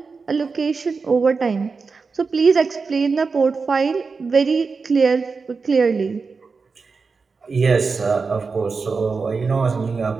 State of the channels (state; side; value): quieter; left; 4.7 dB